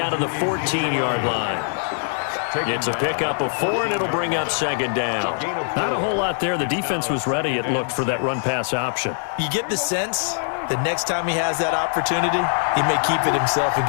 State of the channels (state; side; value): silent; right; digital silence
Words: to the 14-yard line. It's a pickup of 4, and it'll bring up second down. Not a whole lot there. The defense was ready, it looked, for that run-pass option. You get the sense that next time he has that opportunity, he may keep it himself and